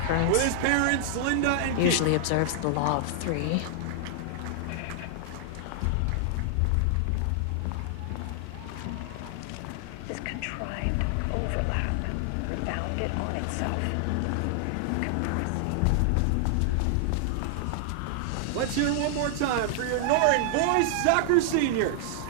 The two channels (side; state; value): both; different; correlation 0.00